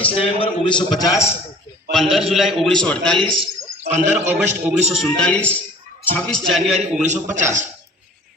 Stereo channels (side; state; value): both; normal; correlation 0.46